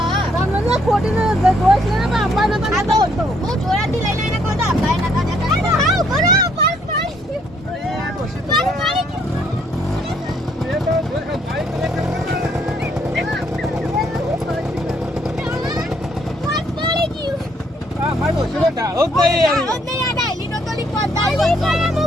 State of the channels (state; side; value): normal; both; correlation 0.68